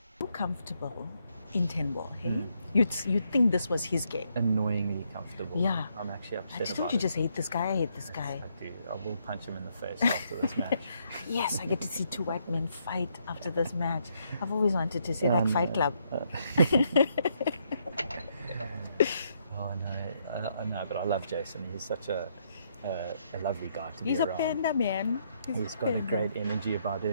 so comfortable in 10-ball, hey? You'd think this was his game. Annoyingly comfortable. Yeah. I'm actually upset Don't about you it. just hate this guy? I hate this guy. I do. I will punch him in the face after this match. Yes, I get to see two white men fight after this match. I've always wanted to see that Fight Club. Oh, no. I know, but I love Jason. He's such a lovely guy to He's be a around. panda, man. He's got a great energy about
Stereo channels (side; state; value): both; inverted; correlation -0.74